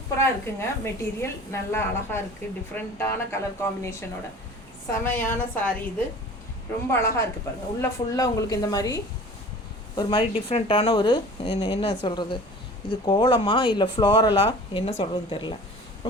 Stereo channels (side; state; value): both; normal; correlation 0.43